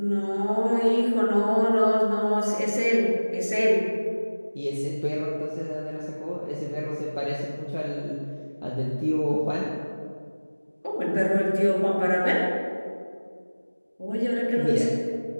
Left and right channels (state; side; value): inverted; both; correlation -1.00